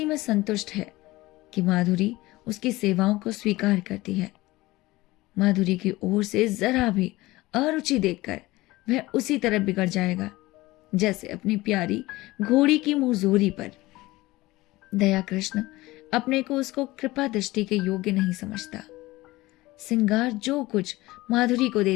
में संतुष्ट है कि माधुरी उसकी सेवाओं को स्वीकार करती है। माधुरी की ओर से जरा भी अरुचि देखकर वह उसी तरह बिगड़ जाएगा जैसे अपनी प्यारी घोड़ी की मुंहजोरी पर। दया कृष्ण अपने को उसको कृपा दृष्टि के योग्य नहीं समझता। श्रृंगार जो कुछ माधुरी को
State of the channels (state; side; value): quieter; right; 19.3 dB